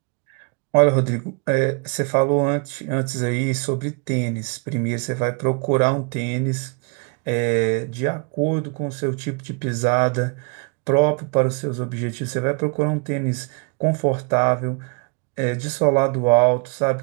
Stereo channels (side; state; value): left; quieter; 34.2 dB